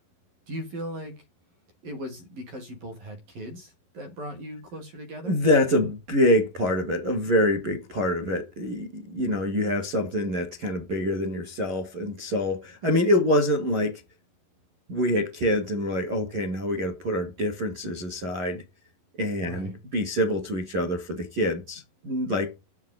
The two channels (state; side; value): late; left; 11 ms